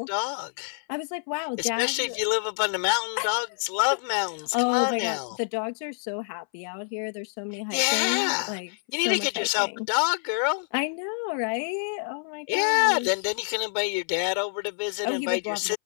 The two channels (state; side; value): silent; right; 60 dB below the other